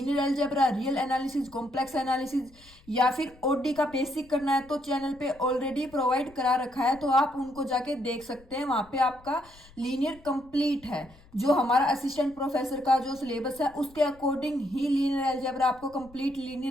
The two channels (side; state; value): left; noise; rumble, 25 dB below the sound